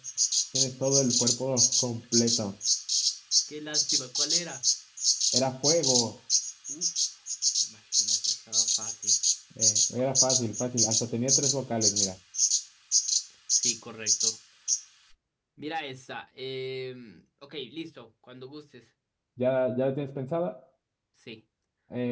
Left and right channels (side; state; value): both; identical; correlation 1.00